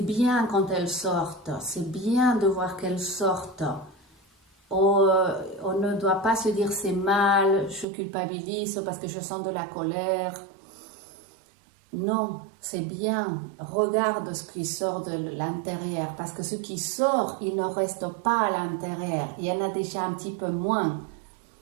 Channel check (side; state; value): left; drops out; at 7.9 s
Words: bien quand elles sortent, c'est bien de voir qu'elles sortent. On ne doit pas se dire c'est mal, je culpabilise parce que je sens de la colère. Non, c'est bien. Regarde ce qui sort de l'intérieur parce que ce qui sort, il ne reste pas à l'intérieur. Il y en a déjà un petit peu moins.